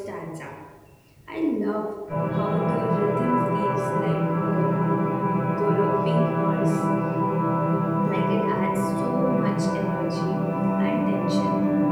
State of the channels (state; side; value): identical; both; correlation 1.00